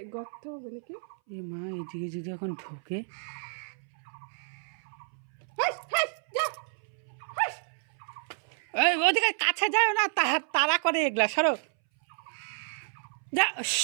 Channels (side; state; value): left; silent; 58 dB below the other